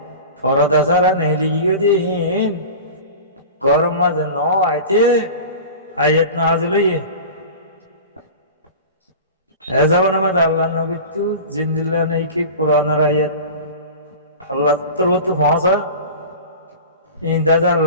ফরদা সারা নেলি গিয়ে দিয়ে গরম মাঝে ন আইতে আয়াত নাজিল হইয়ে এ যাবেন আমাদের আল্লাহ নবী তু জিন্দিল্লা নেই কি কোরআনের আয়াত আল্লাহ তোর তো পৌঁছা ইন্দাজা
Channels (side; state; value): both; inverted; correlation -0.35